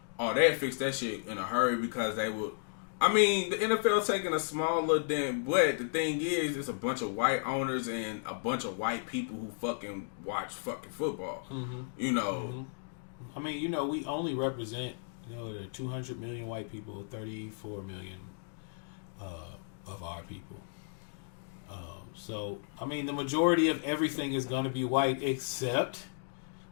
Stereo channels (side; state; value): right; silent; digital silence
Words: they'd fix that shit in a hurry because they would... I mean, the NFL's taking a small little dent, but the thing is, it's a bunch of white owners and a bunch of white people who fucking watch fucking football. Mm-hmm. You know. Mm-hmm. I mean, you know, we only represent, you know, 200 million white people, 34 million of our people. So, I mean, the majority of everything is going to be white except